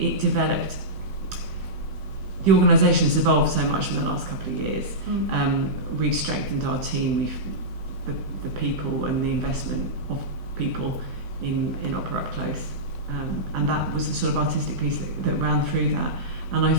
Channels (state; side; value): late; left; 16 ms